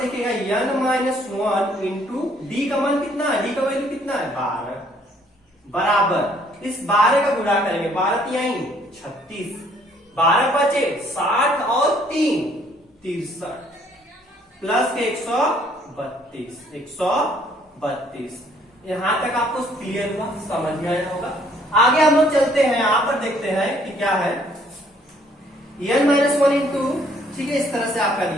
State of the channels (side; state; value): both; normal; correlation 0.63